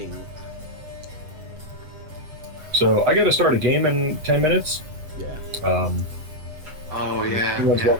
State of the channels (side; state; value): left; late; 7.8 ms